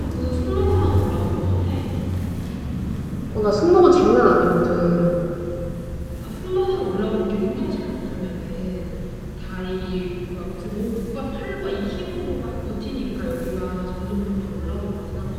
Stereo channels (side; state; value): both; identical; correlation 1.00